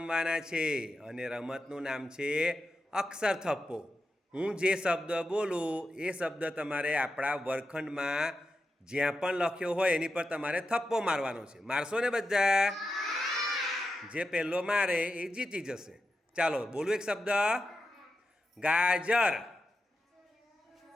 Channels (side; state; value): both; normal; correlation 0.89